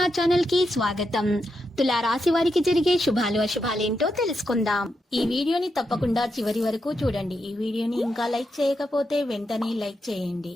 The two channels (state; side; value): normal; both; correlation 0.85